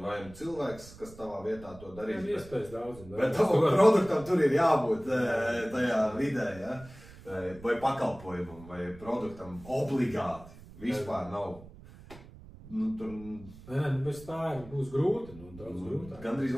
nu cilvēks, kas tavā vietā to darīs. Iespējas daudz. Bet tavu produktam tur ir jābūt tajā vidē, ja? Vai pakalpojumam, vai produktam obligāti. Vispār nav. Tur... Nē, bez tā būs grūti, daudz grūtāk. Gandrīz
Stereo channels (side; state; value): right; noise; rumble, 19 dB below the sound